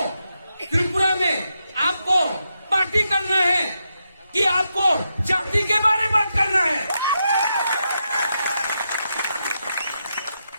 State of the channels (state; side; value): inverted; both; correlation -0.84